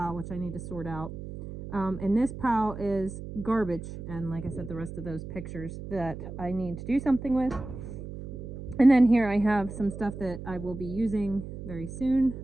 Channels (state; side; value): noise; right; hum, 10 dB below the sound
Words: which I need to sort out. And this pile is garbage, and like I said, the rest of those pictures that I need to do something with. And then here I have some stuff that I will be using very soon.